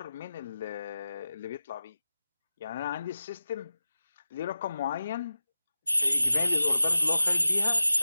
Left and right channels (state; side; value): inverted; both; correlation -0.93